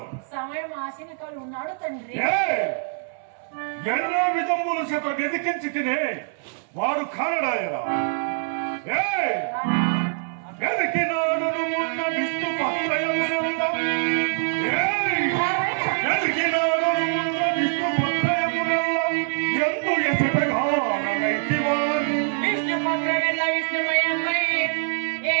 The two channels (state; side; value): silent; left; 62 dB below the other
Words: సమయం ఆశనికాలు ఉన్నాడు తండ్రి. ఎన్నో విధములు చేత వెతికించి తినే వాడు కానడాయరా వెతికినాడు ఉన్న విష్ణు పత్రయమునంద వెతికినాడు ఉన్న విష్ణు పత్రయమునంద ఎందు ఎసటగా నైతి వారు విష్ణు పత్రమెల్ల విష్ణుమయమై